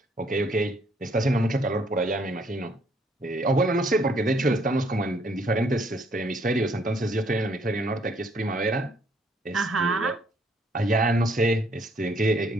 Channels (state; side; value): normal; both; correlation 0.67